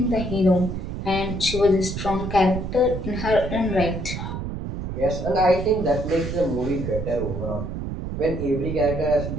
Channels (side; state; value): right; noise; rumble, 5 dB below the sound